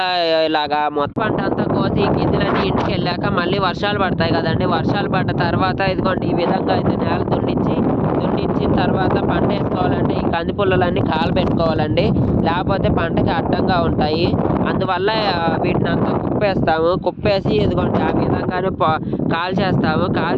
ఇలాగా మొత్తం పంట అంతా కోసి గింజలన్నీ ఇంటికి వెళ్ళాక మళ్ళీ వర్షాలు పడతాయి కదండి. వర్షాలు పడ్డ తర్వాత ఇదిగోండి ఈ విధంగా అయితే నేల దున్నించిన తర్వాత పంట వేసుకోవాలంటే ఈ కంది పుల్లలన్నీ కాలబెట్టుకోవాలండి, లేకపోతే పంటకి అడ్డంగా ఉంటాయి. అందువల్ల వీటిని అంతా కుప్పేసి ఇదిగోండి ఆ విధంగానే కాల్చేస్తాము.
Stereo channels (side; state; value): both; identical; correlation 1.00